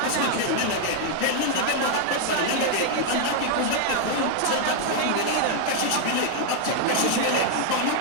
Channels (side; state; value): both; different; correlation 0.00